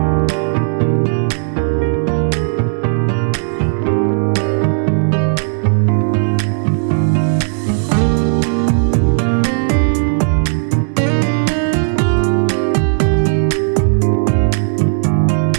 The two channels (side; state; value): left; silent; 64 dB below the other